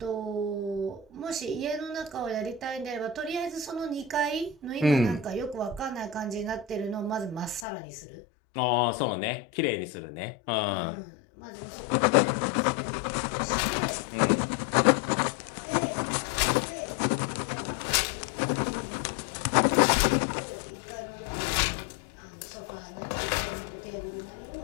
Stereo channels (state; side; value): drops out; right; at 7.7 s